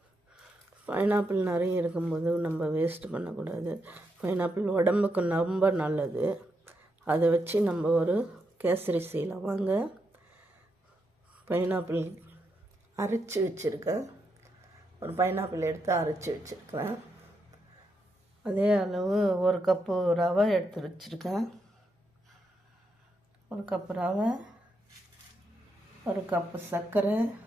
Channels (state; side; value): normal; both; correlation 0.82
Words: பைனாப்பிள் நிறைய இருக்கும்போது நம்ம வேஸ்ட் பண்ணக்கூடாது. பைனாப்பிள் உடம்புக்கு ரொம்ப நல்லது. அதை வச்சு நம்ம ஒரு கேசரி செய்யலாம். வாங்க. பைனாப்பிள் அரைச்சி வச்சுருக்கேன். ஒரு பைனாப்பிள் எடுத்து அரைச்சி வச்சுருக்கேன். அதே அளவு ஒரு கப்பு ரவை எடுத்து வச்சுருக்கேன். ஒரு கப்பு ரவை, ஒரு கப்பு சர்க்கரை